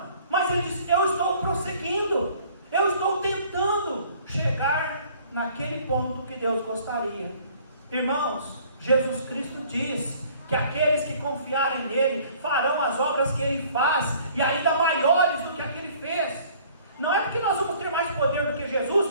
mas ele diz, eu estou prosseguindo, eu estou tentando chegar naquele ponto que Deus gostaria. Irmãos, Jesus Cristo diz que aqueles que confiarem nele farão as obras que ele faz, e ainda maiores do que a que ele fez. Não é porque nós vamos ter mais poder do que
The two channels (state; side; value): inverted; both; correlation -0.54